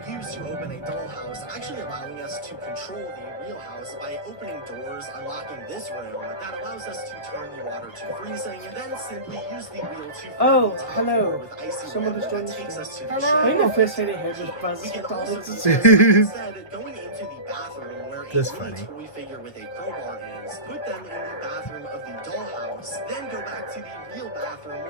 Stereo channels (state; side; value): late; right; 1.5 ms